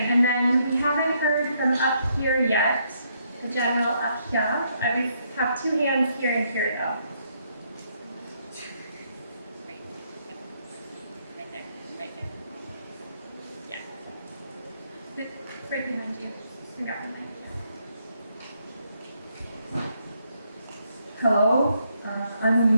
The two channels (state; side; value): inverted; both; correlation -0.74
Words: then we haven't heard from up here yet, the general up here. I have two hands here and here though. Right there, right there. Yeah. Right behind you. And got behind you. Hello, I'm